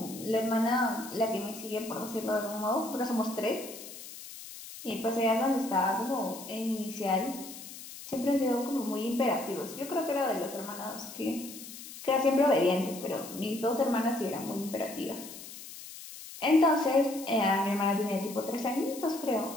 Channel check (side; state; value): left; noise; hiss, 13 dB below the sound